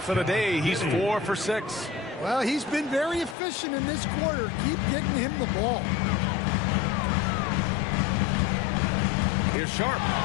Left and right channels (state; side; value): drops out; right; at 3.4 s